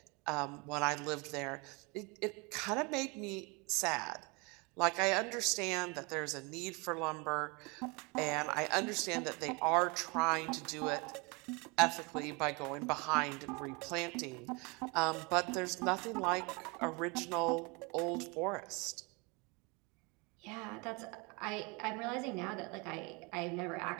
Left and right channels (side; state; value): left; quieter; 29.1 dB